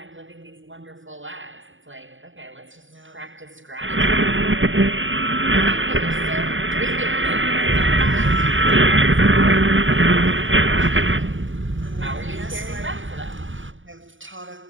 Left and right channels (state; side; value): late; left; 0.57 ms